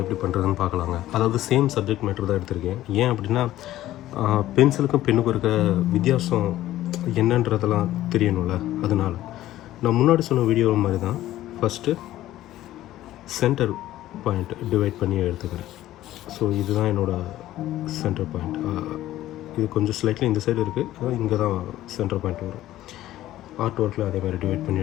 எப்படி பண்ணுறதுன்னு பார்க்கலாங்க. அதாவது சேம் சப்ஜெக்ட் மேட்டர் தான் எடுத்திருக்கேன். ஏன் அப்படின்னா பென்சிலுக்கும் பெண்ணுக்கும் இருக்க வித்தியாசம் என்னன்றதெல்லாம் தெரியணும்ல, அதனால் நான் முன்னாடி சொன்ன வீடியோ மாதிரி தான் ஃபஸ்ட்டு சென்டர் பாயிண்ட் டிவைட் பண்ணி எடுத்துக்கிறேன். ஸோ இதுதான் என்னோடய சென்டர் பாயிண்ட். இது கொஞ்சம் ஸ்லைட்லி இந்த சைடு இருக்குது, அதாவது இங்கே தான் சென்டர் பாயிண்ட் வரும். ஆர்ட் ஒர்க்கில் அதே மாதிரி டிவைட் பண்ணி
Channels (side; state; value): right; quieter; 14.3 dB